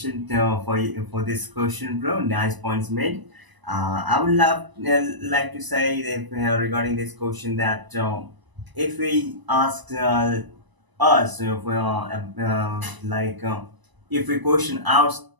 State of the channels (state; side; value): late; left; 1.0 ms